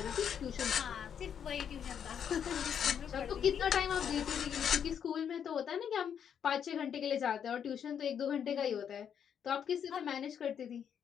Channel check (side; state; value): right; quieter; 8.2 dB